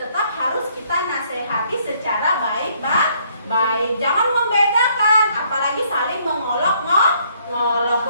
harus kita nasehati secara baik. Jangan membedakan, apalagi saling mengolok-ngolok.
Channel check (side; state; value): both; inverted; correlation -0.67